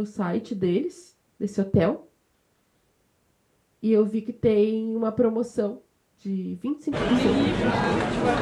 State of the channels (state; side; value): identical; both; correlation 1.00